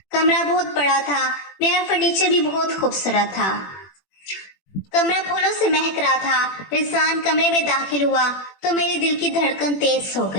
कमरा बहुत बड़ा था। मेरा फर्नीचर भी बहुत खूबसूरत था। कमरा फूलों से महक रहा था। रिजवान कमरे में दाखिल हुआ तो मेरे दिल की धड़कन तेज हो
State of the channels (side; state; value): right; late; 21 ms